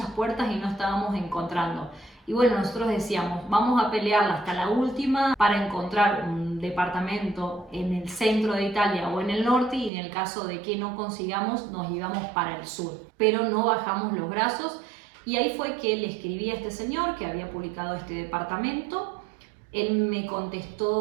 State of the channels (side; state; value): left; drops out; at 9.9 s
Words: puertas y no estábamos encontrando. Y bueno, nosotros decíamos, vamos a pelearla hasta la última para encontrar un departamento en el centro de Italia o en el norte, y en el caso de que no consigamos nos íbamos para el sur. Pero no bajamos los brazos y ahí fue que le escribí a este señor que había publicado este departamento. Él me